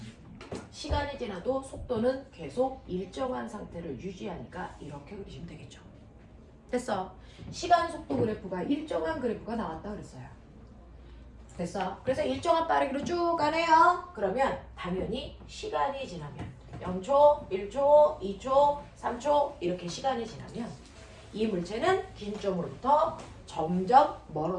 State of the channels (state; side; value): identical; both; correlation 1.00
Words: 시간이 지나도 속도는 계속 일정한 상태를 유지하니까 이렇게 그리시면 되겠죠. 됐어. 시간 속도 그래프가 일정한 그래프가 나왔다 그랬어요. 됐어. 그래서 일정한 빠르기로 쭉 가네요. 그러면 당연히 시간이 지나면 0초, 1초, 2초, 3초 이렇게 시간이 지나면 이 물체는 긴 점으로부터 점점